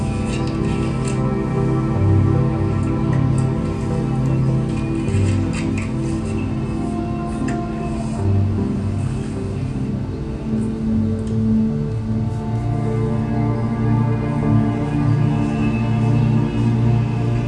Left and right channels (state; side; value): identical; both; correlation 1.00